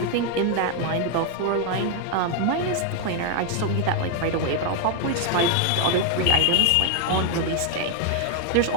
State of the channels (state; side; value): different; both; correlation 0.01